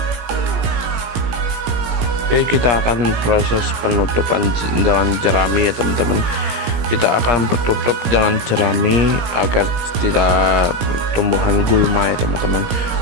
Oke, kita akan proses penutupan dengan jerami ya teman-teman. kita akan bertutup dengan jerami agar tidak tumbuhan gulma ya teman-teman.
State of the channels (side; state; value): left; late; 17 ms